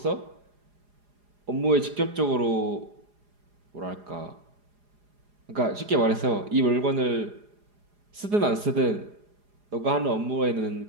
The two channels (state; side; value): late; left; 4.9 ms